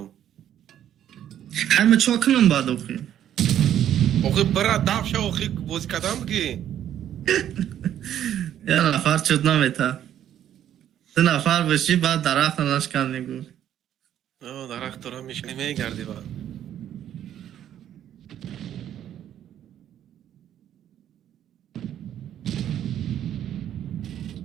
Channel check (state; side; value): quieter; left; 10.7 dB